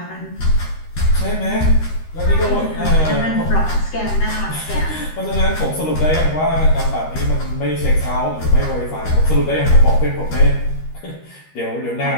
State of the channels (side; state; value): right; late; 13 ms